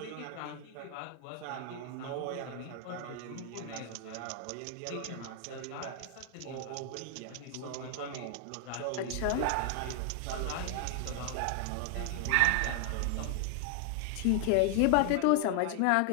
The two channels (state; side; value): different; both; correlation 0.00